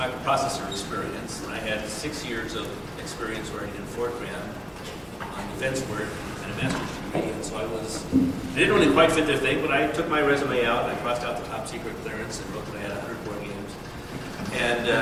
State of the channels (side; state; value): both; identical; correlation 1.00